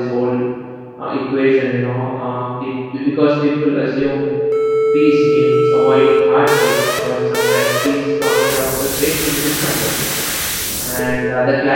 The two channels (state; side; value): identical; both; correlation 1.00